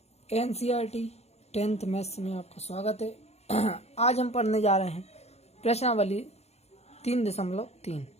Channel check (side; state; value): right; late; 0.31 ms